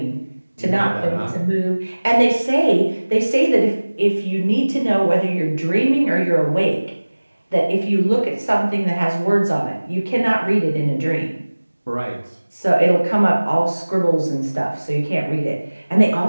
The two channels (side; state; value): both; inverted; correlation -1.00